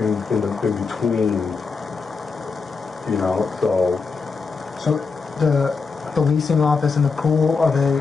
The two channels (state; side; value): quieter; right; 4.7 dB